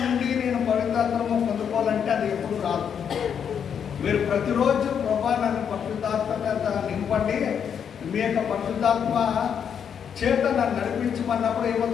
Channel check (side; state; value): right; quieter; 7.8 dB